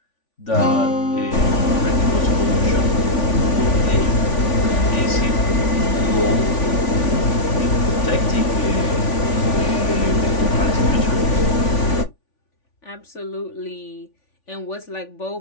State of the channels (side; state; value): right; late; 3.5 ms